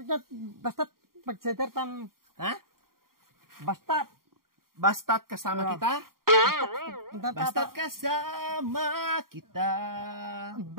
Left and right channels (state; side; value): late; left; 0.92 ms